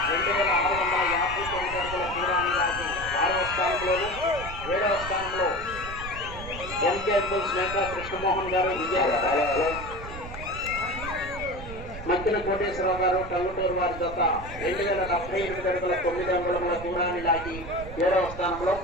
2659 అడుగుల దూరాన్ని లాగి ఆరవ స్థానంలోను, ఏడవ స్థానంలో ఎంకే పుల్స్ మేకా కృష్ణమోహన్ గారు విజయవాడ, మధ్యన కోటేశ్వరరావు గారు టంగుటూరు వారి జత 2078 అడుగుల 9 అంగుళముల దూరాన్ని లాగి 7వ స్థానంలో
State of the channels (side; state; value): right; noise; rumble, 11 dB below the sound